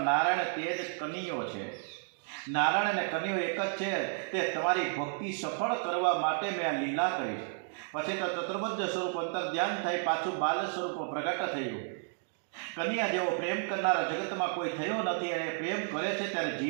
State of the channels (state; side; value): silent; left; 56 dB below the other